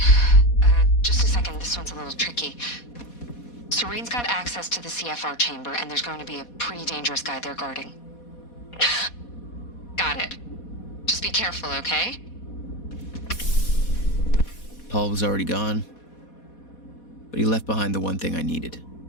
Just a second. This one's a little tricky. Serene's got access to the CFR chamber, and there's going to be a pretty dangerous guy there guarding. Got it. Just be careful, okay? Paul was already gone, but he left behind the one thing I needed.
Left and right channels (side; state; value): right; late; 4.2 ms